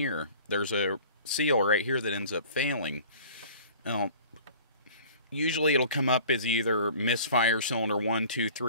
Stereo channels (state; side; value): inverted; both; correlation -0.46